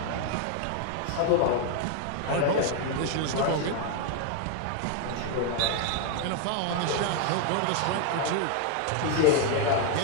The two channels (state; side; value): different; both; correlation 0.01